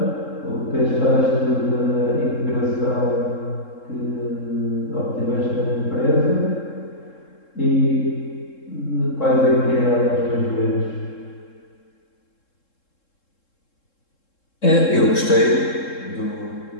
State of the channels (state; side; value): late; right; 3.7 ms